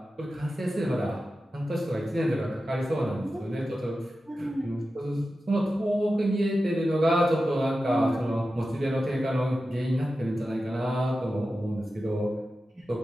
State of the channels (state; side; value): normal; both; correlation 0.93